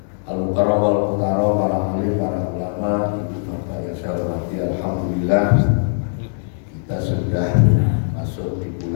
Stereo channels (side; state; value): right; silent; digital silence